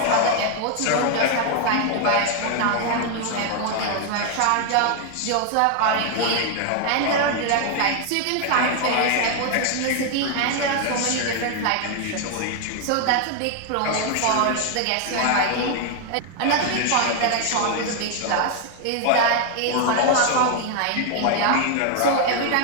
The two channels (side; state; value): both; different; correlation 0.00